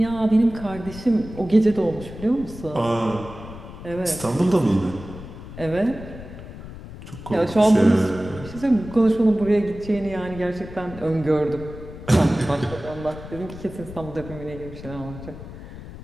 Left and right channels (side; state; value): left; noise; rumble, 13 dB below the sound